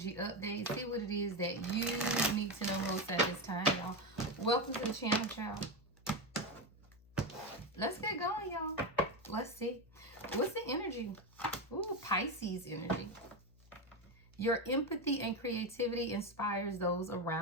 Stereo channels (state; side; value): noise; left; hum, 26 dB below the sound